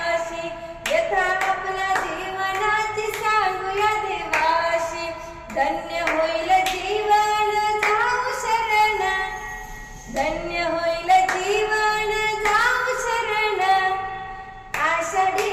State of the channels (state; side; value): identical; both; correlation 1.00